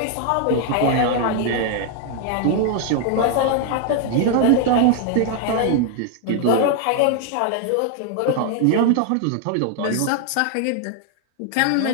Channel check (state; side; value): different; both; correlation 0.00